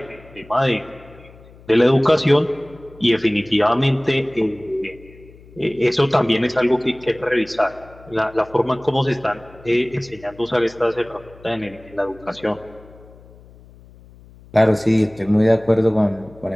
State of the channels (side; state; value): left; noise; hum, 23 dB below the sound